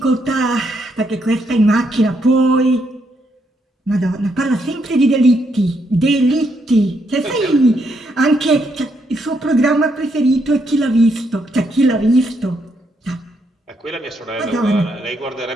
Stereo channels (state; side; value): normal; both; correlation 0.76